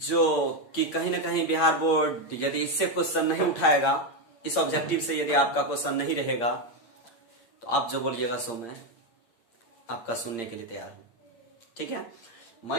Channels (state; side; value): late; right; 8.7 ms